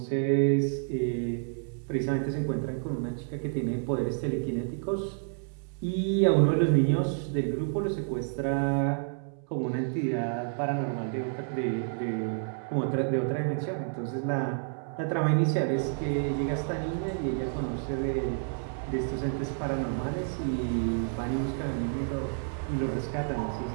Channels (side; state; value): left; silent; 58 dB below the other